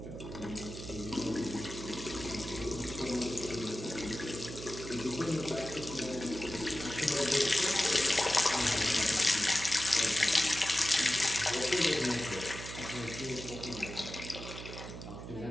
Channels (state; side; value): noise; right; hum, 10 dB below the sound